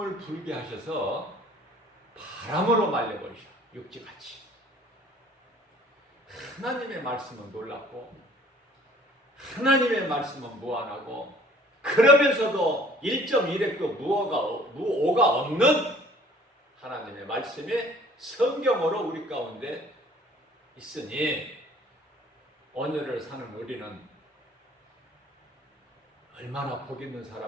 불게 하셔서 바람으로 말려버리셔. 육지같이. 하나님의 말씀은 놀랍고 하나님의 말씀은 무한하고 그러면서도 1.1획도 무오가 없는 하나님의 말씀이 성경으로 우리 가운데 있으니 오늘을 사는 우리는 얼마나 복 있는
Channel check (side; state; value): both; normal; correlation 0.54